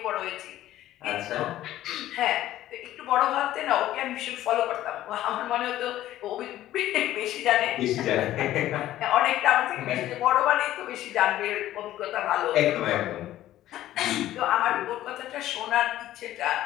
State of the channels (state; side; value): quieter; right; 13.8 dB